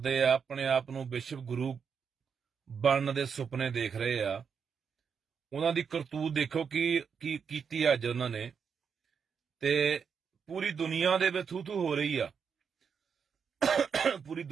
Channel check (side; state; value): left; quieter; 6.5 dB